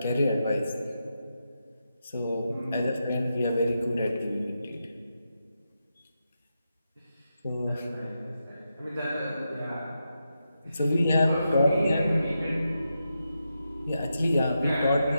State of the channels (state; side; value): inverted; both; correlation -0.87